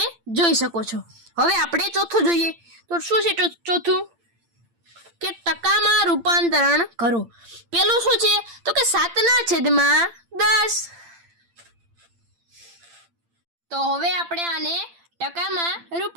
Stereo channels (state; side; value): late; left; 8.8 ms